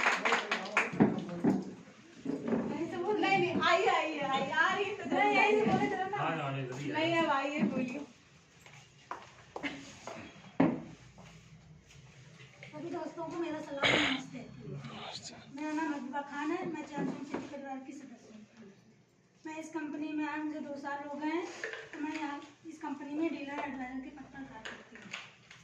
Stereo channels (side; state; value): both; identical; correlation 1.00